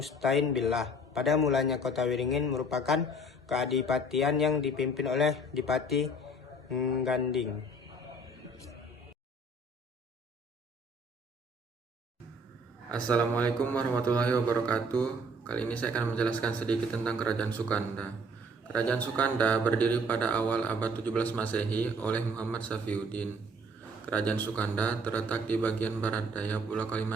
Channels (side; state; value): both; normal; correlation 0.55